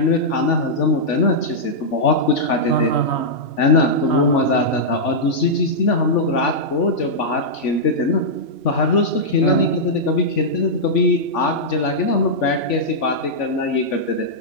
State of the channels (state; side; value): late; right; 3.5 ms